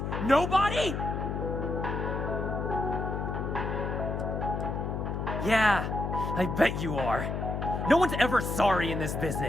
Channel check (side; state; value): left; noise; hum, 3 dB below the sound